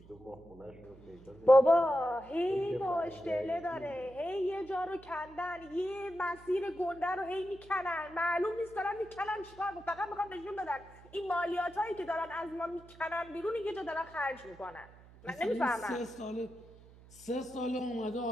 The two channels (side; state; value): right; noise; hum, 22 dB below the sound